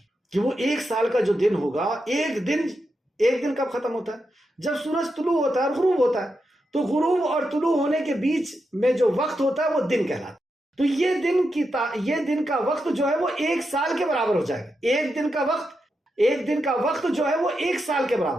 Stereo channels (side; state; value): both; normal; correlation 0.86